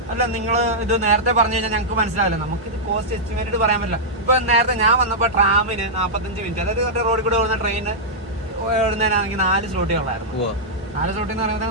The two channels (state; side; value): normal; both; correlation -0.09